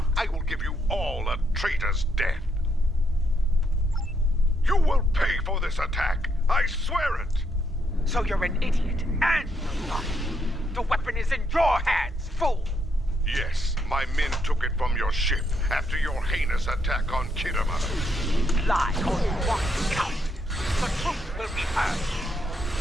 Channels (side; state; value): both; normal; correlation 0.76